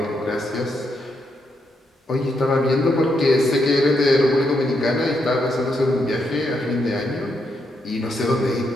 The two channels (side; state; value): both; normal; correlation 0.79